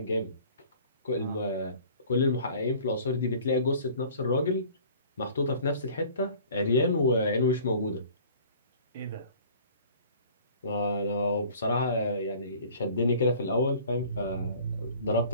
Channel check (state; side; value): inverted; both; correlation -0.49